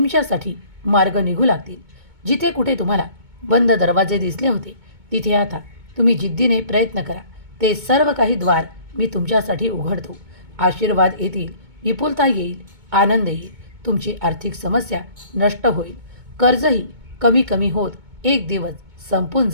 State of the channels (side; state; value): left; late; 2.2 ms